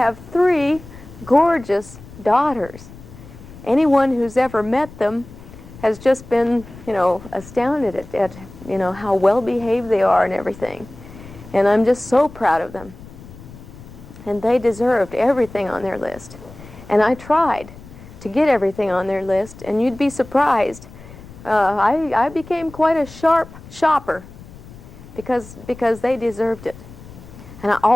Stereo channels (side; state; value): left; noise; rumble, 18 dB below the sound